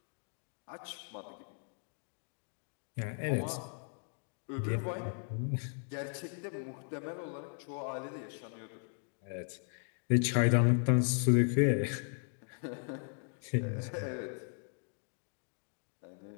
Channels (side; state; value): right; silent; 53 dB below the other